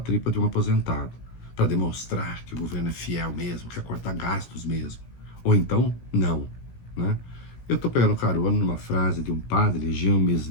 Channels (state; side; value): late; right; 17 ms